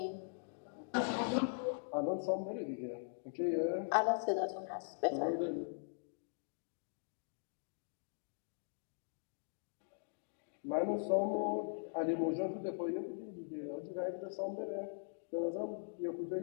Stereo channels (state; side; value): silent; right; digital silence